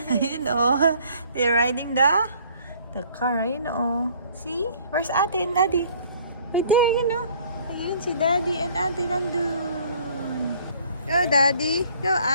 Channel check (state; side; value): inverted; both; correlation -0.57